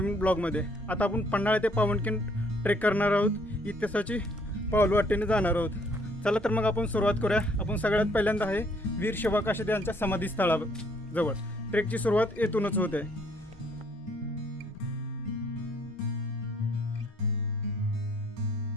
ब्लॉगमध्ये। आता आपण पन्हाळा ते पावनखिंड ट्रेक करणार आहोत, इतिहासाची पाऊलवाटेने जाणार आहोत। चला तर मग आपण सुरुवात करूया। आपण सगळ्यात पहिल्यांदा आहे वीर शिवा काशीद यांच्या समाधीस्थळाजवळ। ट्रेकची सुरुवात येथूनच होते।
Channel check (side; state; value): both; normal; correlation 0.64